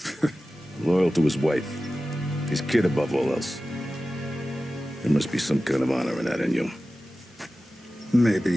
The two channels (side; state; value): both; normal; correlation 0.95